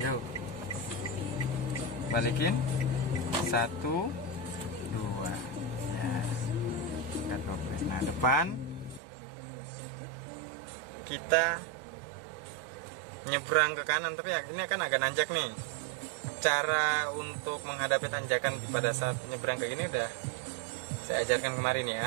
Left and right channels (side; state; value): left; drops out; at 9.0 s